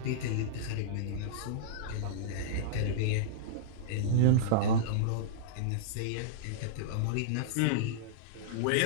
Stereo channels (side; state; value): both; different; correlation -0.03